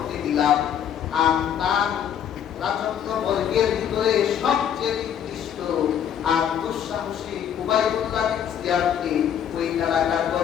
দিলাম, আর তার রাজত্ব বর্গের ভিতরে সবচেয়ে নিকৃষ্ট আর দুঃসাহসী উবাইদুল্লাহ বিন জিয়াদকে ওই এলাকার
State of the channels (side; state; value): right; quieter; 9.1 dB